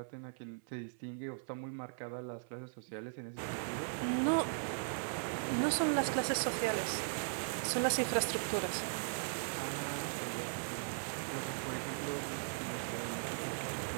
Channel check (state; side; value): silent; left; 52 dB below the other